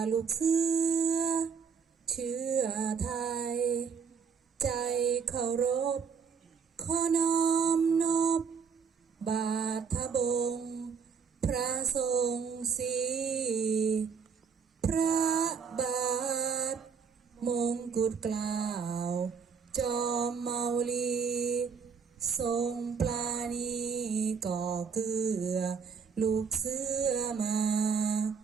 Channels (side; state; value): left; quieter; 6.2 dB